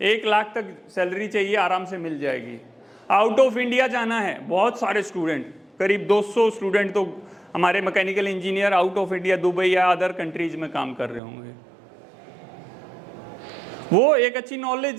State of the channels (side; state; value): left; drops out; at 11.2 s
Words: 1 लाख तक सैलरी चाहिए, आराम से मिल जाएगी। आउट ऑफ इंडिया जाना है, बहुत सारे स्टूडेंट, करीब 200 स्टूडेंट तो हमारे mechanical engineer out of India Dubai या अदर कंट्रीज में काम कर रहे होंगे। वो एक अच्छी